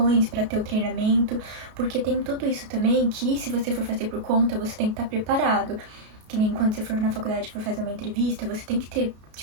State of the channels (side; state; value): left; late; 33 ms